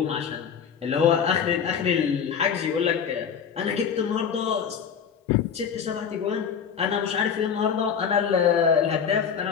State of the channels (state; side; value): quieter; right; 7.2 dB